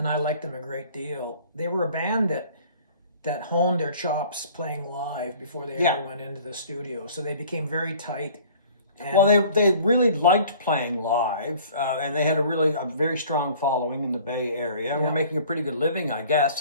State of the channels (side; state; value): both; inverted; correlation -0.50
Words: liked them a great deal. They were a band that honed their chops playing live before they ever went into the studio. So they became very tight. And well, they really liked playing live, and they had a very strong following in the Bay Area. And were making a pretty good living, I